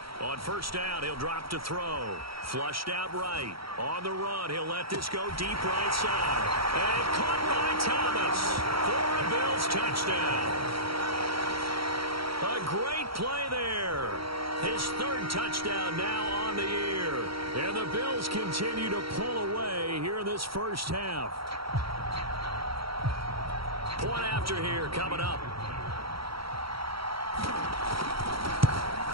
On first down, he'll drop to throw. Flushed out right. On the run, he'll let this go deep right side. And caught by Thomas for a Bills touchdown. A great play there. His third touchdown now on the year. And the Bills continue to pull away here in this first half. Point after here coming up.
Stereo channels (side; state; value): left; late; 0.75 ms